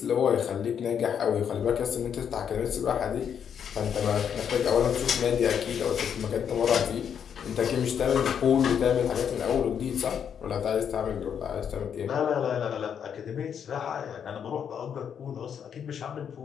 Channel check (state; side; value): quieter; right; 8.0 dB